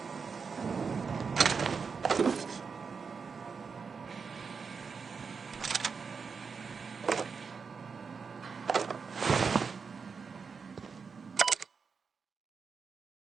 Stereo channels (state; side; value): quieter; left; 5.5 dB